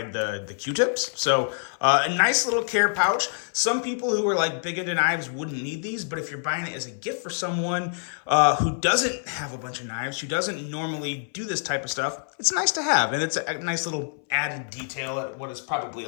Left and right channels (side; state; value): right; silent; 58 dB below the other